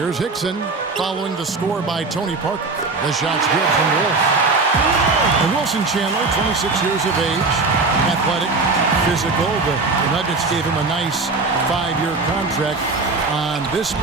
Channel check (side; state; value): left; quieter; 3.8 dB